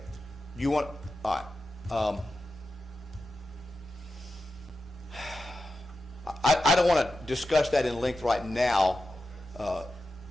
You want, all right. I don't want to discuss that in length right now,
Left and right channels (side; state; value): both; normal; correlation 0.91